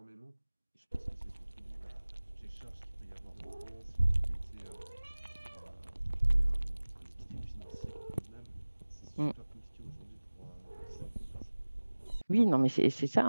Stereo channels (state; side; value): inverted; both; correlation -1.00